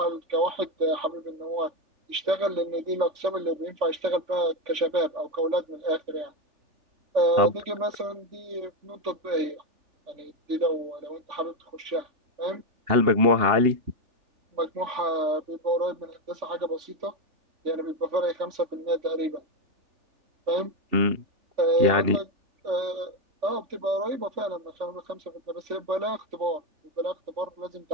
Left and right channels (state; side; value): late; left; 3.5 ms